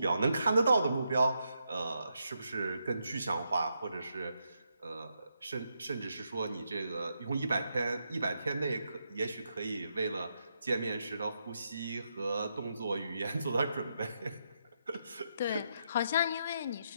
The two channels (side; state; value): both; inverted; correlation -0.81